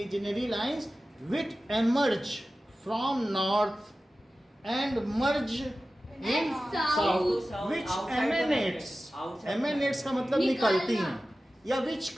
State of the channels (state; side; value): normal; both; correlation 0.95